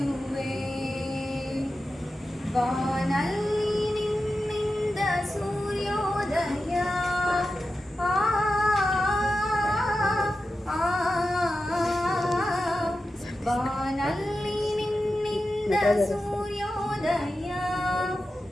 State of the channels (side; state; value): both; normal; correlation 0.92